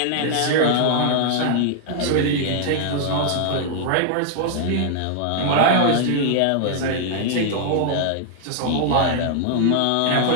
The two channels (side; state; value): both; different; correlation 0.00